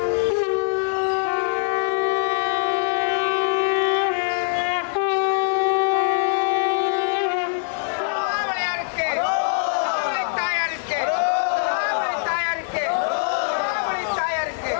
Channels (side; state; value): right; silent; 64 dB below the other